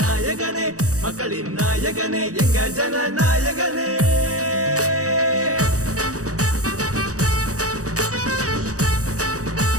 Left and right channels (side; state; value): left; late; 0.66 ms